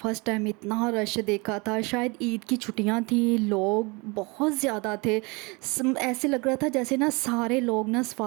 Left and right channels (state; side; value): quieter; left; 27.4 dB